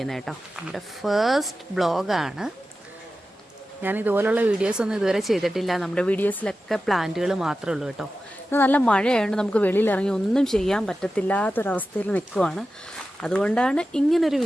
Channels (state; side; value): normal; both; correlation 0.93